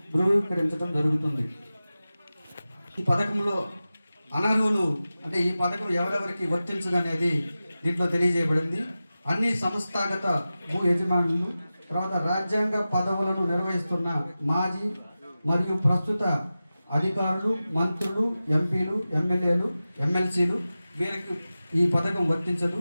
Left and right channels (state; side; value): inverted; both; correlation -0.95